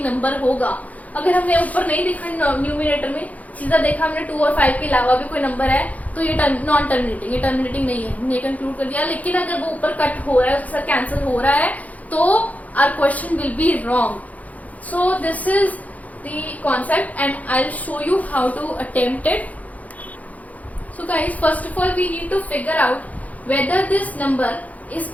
नंबर होगा। अगर हमने ऊपर नहीं देखा न्यूमरेटर में, सीधा देखा हमने 2 और 5 के अलावा भी कोई नंबर है तो ये नॉन टर्मिनेटिंग, ये टर्मिनेटिंग नहीं है, हमने कंक्लूड कर दिया। लेकिन अगर वो ऊपर कट हो रहा है, उसके साथ कैंसिल हो रहा है तो our question will be wrong. So this is the concept and I'll show you how to attempt it. So guys, first of all we need to figure out whether this number is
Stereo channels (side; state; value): right; late; 0.074 ms